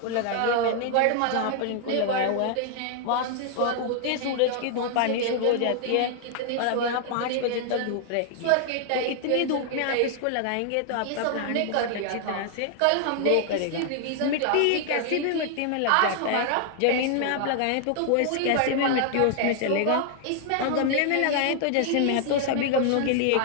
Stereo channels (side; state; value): both; different; correlation 0.00